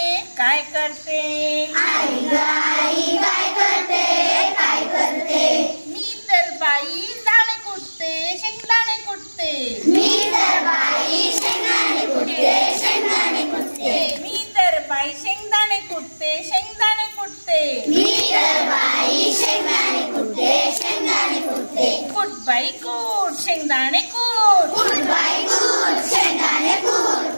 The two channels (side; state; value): both; inverted; correlation -1.00